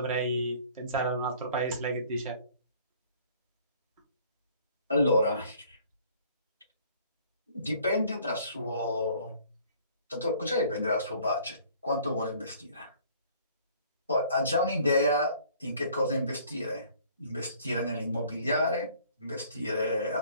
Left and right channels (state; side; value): inverted; both; correlation -0.56